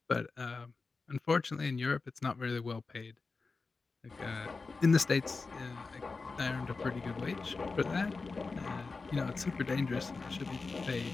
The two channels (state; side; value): quieter; right; 4.1 dB